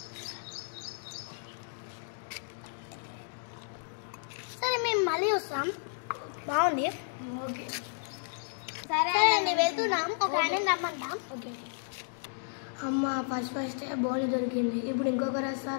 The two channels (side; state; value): right; silent; digital silence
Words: సరే మేము మళ్ళీ వస్తాం. బాగుంది. ఓకే సరే అండి, వెళ్తున్నాం. ఒక ఆయన రమ్మంటాం. ఓకే. అమ్మ ఫస్ట్ బౌల్ దొరికింది. ఇప్పుడు ఇంకొకరు